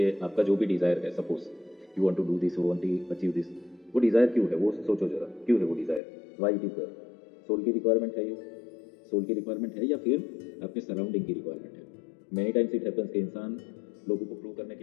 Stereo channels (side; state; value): right; drops out; at 6.0 s